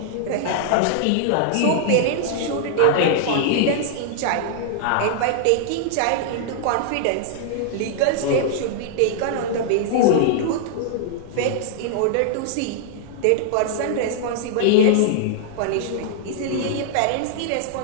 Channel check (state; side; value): different; both; correlation -0.01